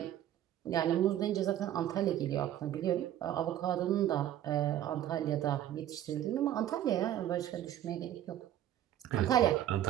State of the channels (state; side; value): quieter; left; 11.9 dB